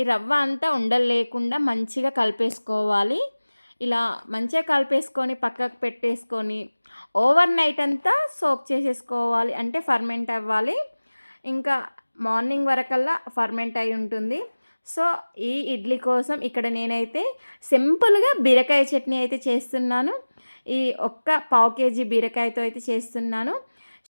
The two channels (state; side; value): inverted; both; correlation -1.00